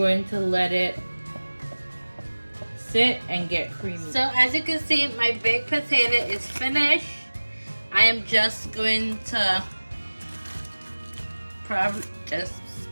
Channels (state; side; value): inverted; both; correlation -1.00